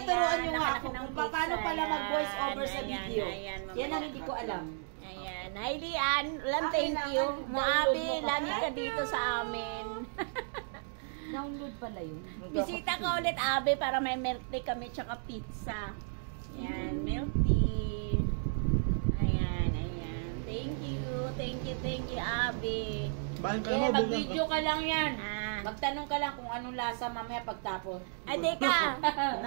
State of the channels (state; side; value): silent; left; digital silence